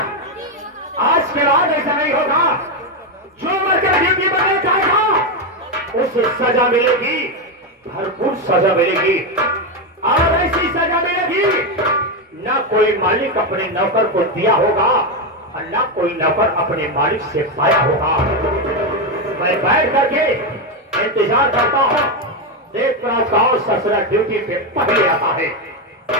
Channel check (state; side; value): normal; both; correlation 0.08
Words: आज के बाद ऐसा नहीं होगा। जो वर्कर ड्यूटी पर जाएगा उसे सजा मिलेगी, भरपूर सजा मिलेगी। और ऐसी सजा मिलेगी ना कोई मालिक अपने नौकर को दिया होगा और ना कोई नौकर अपने मालिक से पाया होगा। मैं बैठ करके इंतजार करता हूं, देख रहा गांव ससुरा ड्यूटी पे पहले आता है।